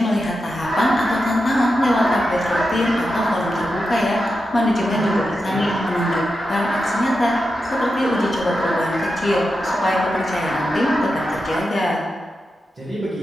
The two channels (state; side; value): normal; both; correlation 0.89